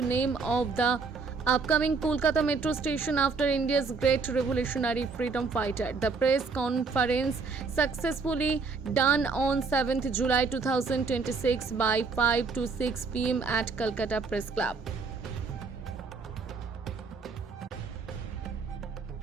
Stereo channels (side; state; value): left; quieter; 4.6 dB